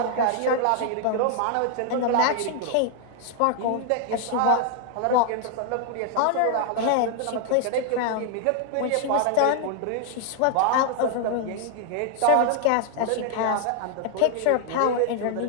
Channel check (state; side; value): different; both; correlation 0.00